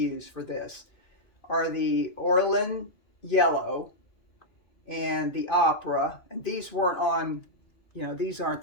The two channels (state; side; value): late; right; 2.5 ms